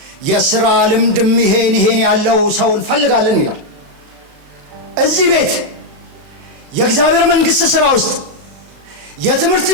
የሥራ ልምድም ይሄን ያለው ሰው እንፈልጋለን ይላል። እዚህ ቤት የእግዚአብሔር መንግሥት ሥራ ውስጥ የትምህርት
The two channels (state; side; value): late; left; 36 ms